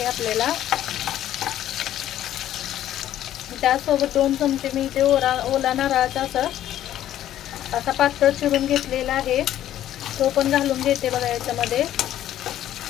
आपल्याला. त्यासोबत 2 चमचे मी इथे ओला नारळाचा असा पातळ चिरून घेतलेला आहे, तो पण घालून घेते बघा याच्यामध्ये.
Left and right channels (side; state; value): right; quieter; 12.2 dB